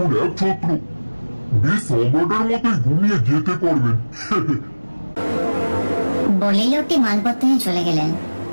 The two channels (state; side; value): inverted; both; correlation -1.00